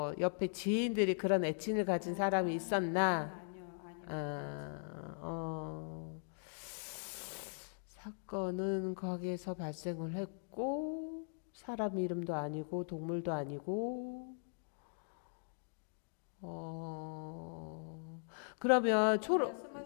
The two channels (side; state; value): right; silent; digital silence